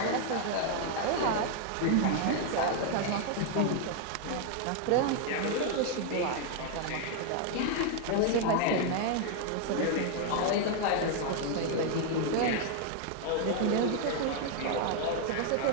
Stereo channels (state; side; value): different; both; correlation 0.00